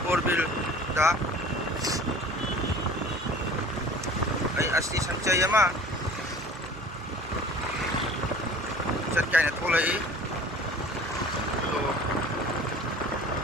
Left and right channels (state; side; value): normal; both; correlation 0.45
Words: Morbil da ay asti sanchay ama chat kay na tulay to